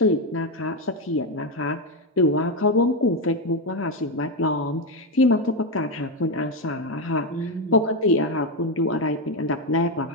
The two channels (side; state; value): both; normal; correlation 0.09